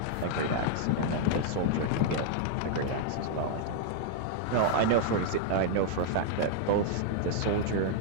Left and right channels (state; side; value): different; both; correlation -0.01